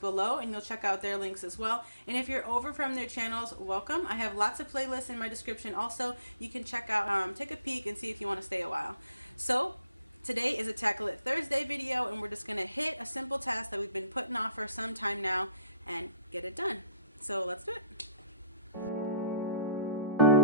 and you'll check out their links as well. And if you're over from their channels, welcome. I have lots of playlists in my description also. You can check out, take a peek and see if you want to stay a while. So today is a Tackle It Thursday video, and we're just going to hit a simple task that we've been putting off for some time now and get it done. So let's do it.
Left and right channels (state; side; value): inverted; both; correlation -0.63